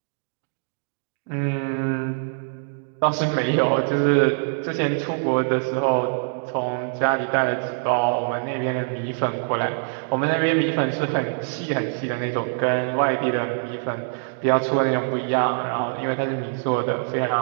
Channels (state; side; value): silent; left; digital silence